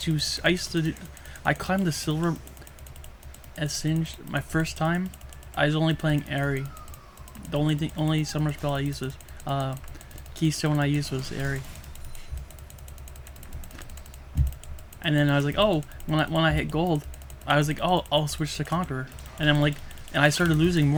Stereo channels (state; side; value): identical; both; correlation 1.00